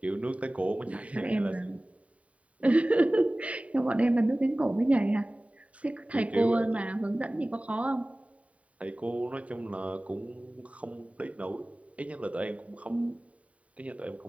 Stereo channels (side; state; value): left; late; 0.067 ms